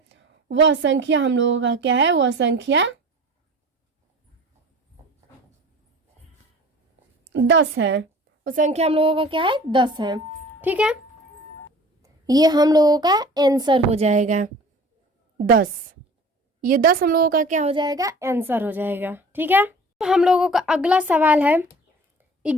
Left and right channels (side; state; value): both; normal; correlation 0.43